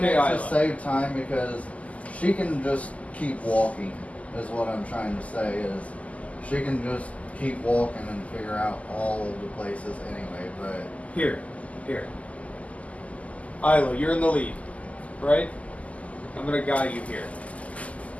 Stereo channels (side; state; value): right; late; 0.070 ms